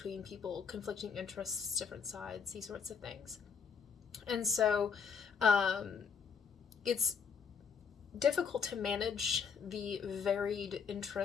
people, conflicting interests, different sides, these sorts of things. And so it's difficult to manage the varied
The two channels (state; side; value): quieter; right; 6.3 dB